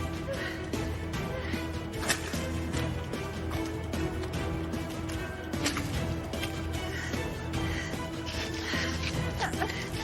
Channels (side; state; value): both; identical; correlation 1.00